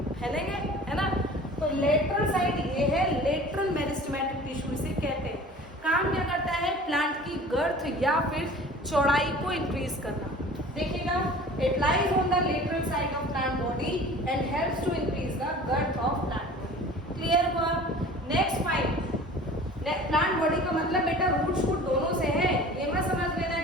फैलेंगे, है ना। तो लेटरल साइड ये है, लेटरल मेरिस्टेमेटिक टिश्यू इसे कहते हैं। काम क्या करता है? प्लांट की गर्थ या फिर चौड़ाई को इंक्रीज करना। देखिएगा, it lies on the lateral side of plant body and helps to increase the girth of plant body. Clear हुआ? नेक्स्ट फाइंड, प्लांट बॉडी का मतलब बेटा रूट शूट दोनों से है, ये मत समझ लेना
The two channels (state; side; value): normal; both; correlation 0.43